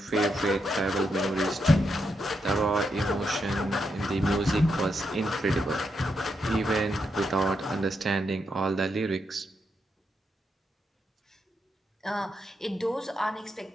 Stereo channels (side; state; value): both; normal; correlation 0.82